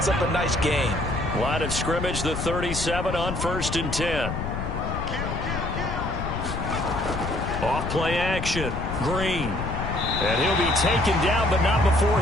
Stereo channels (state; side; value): noise; left; rumble, 4 dB below the sound